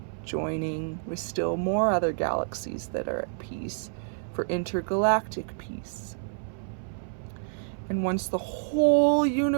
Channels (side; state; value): left; silent; 58 dB below the other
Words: joining with still more other galaxies that are at peace for intergalactic peace. And once the whole